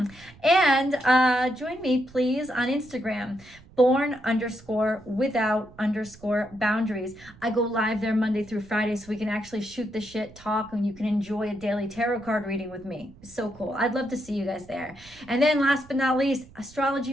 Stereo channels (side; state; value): right; noise; rumble, 23 dB below the sound